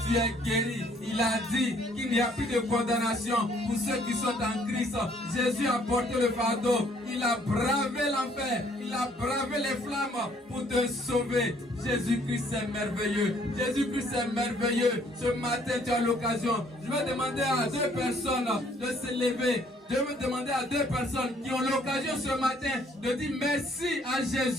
tu es guéri. Il a dit qu'il n'y a plus de condamnation pour ceux qui sont en Christ. Jésus a porté le fardeau. Il a bravé l'enfer. Il a bravé les flammes pour te sauver. Jésus-Christ est merveilleux. Jésus-Christ est merveilleux. Ce matin, tu as l'occasion. Je vais demander à 2 personnes de se lever. Je vais demander à 2 personnes qui ont l'occasion ce matin de dire merci à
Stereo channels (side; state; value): both; normal; correlation 0.63